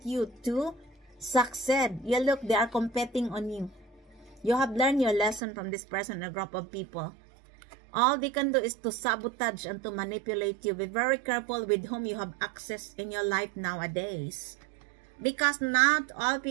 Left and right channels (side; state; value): left; drops out; at 5.4 s